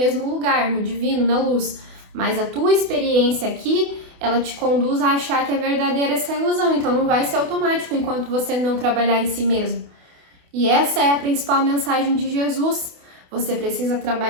lugar, no divino, na luz. Mas a tua experiência aqui, ela te conduz a achar que é verdadeira essa ilusão. Então não vai ser automático enquanto você não trabalhar em si mesmo. E essa é a principal mensagem de Jesus. Você precisa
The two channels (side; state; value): left; late; 28 ms